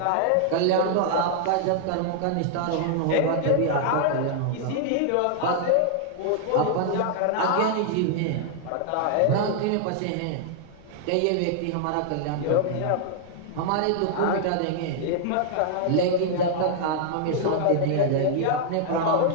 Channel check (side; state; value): both; different; correlation -0.01